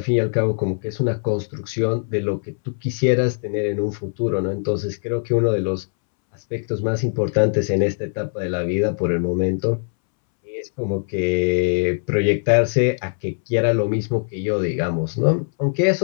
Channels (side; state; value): right; silent; 65 dB below the other